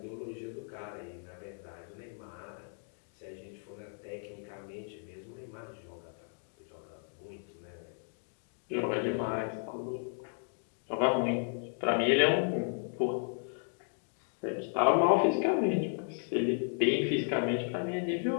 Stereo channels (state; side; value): silent; right; 55 dB below the other